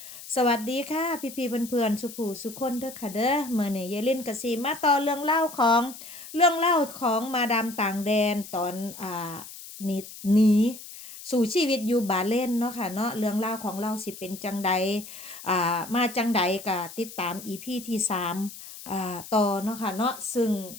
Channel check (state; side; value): noise; left; hiss, 14 dB below the sound